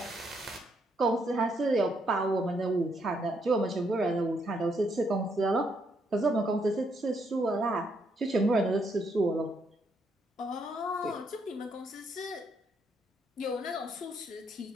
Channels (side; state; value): both; normal; correlation 0.75